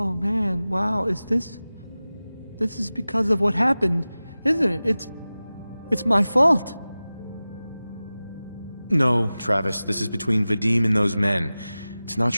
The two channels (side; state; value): both; inverted; correlation -0.97